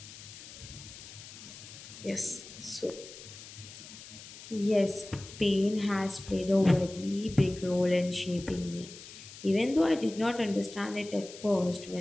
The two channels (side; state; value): left; noise; hiss, 15 dB below the sound